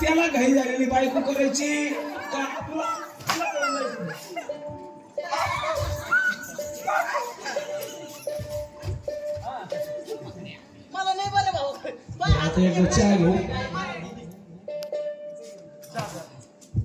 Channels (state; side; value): identical; both; correlation 1.00